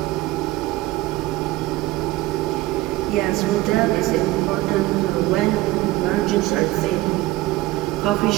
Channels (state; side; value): quieter; left; 18.3 dB